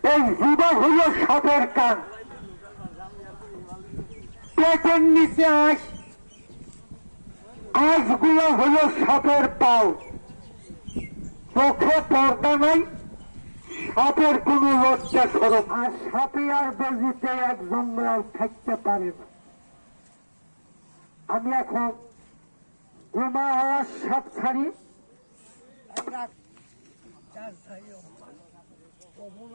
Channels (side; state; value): both; inverted; correlation -1.00